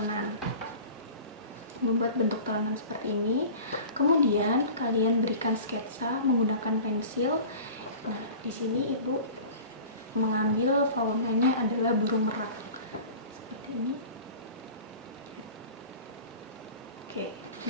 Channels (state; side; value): inverted; both; correlation -0.39